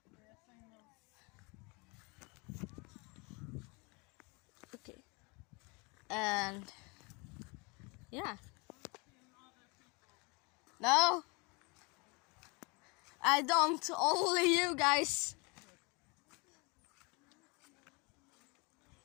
Okay, and yeah. No, I don't. Only you guys.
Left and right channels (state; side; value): quieter; right; 29.1 dB